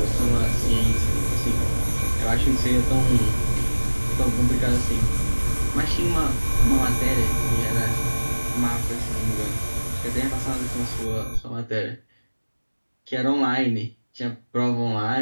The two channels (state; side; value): inverted; both; correlation -1.00